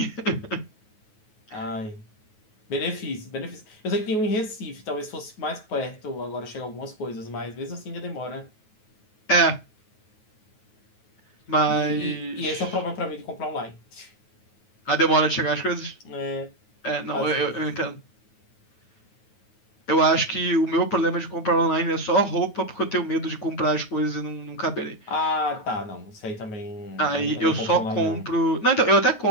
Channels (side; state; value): right; late; 9.3 ms